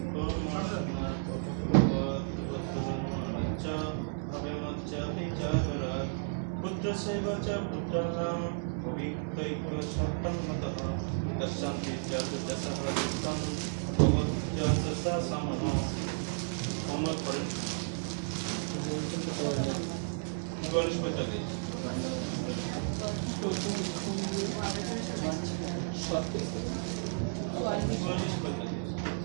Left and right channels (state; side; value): silent; left; digital silence